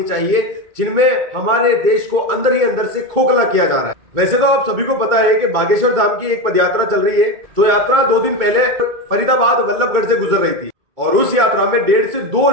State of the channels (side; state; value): left; late; 2.2 ms